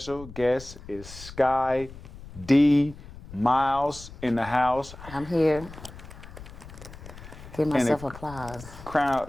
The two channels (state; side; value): noise; left; rumble, 16 dB below the sound